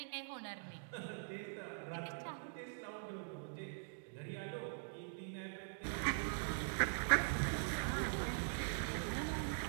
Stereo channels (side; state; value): left; silent; digital silence